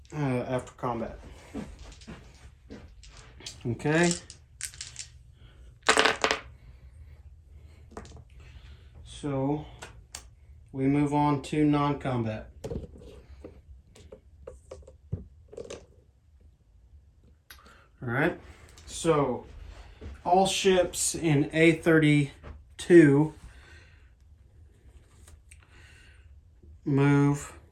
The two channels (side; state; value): both; identical; correlation 1.00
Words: after combat. Okay. So we move on to non-combat. All right. So all ships in A32 move